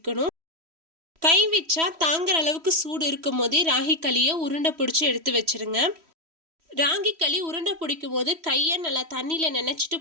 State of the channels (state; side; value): late; left; 3.1 ms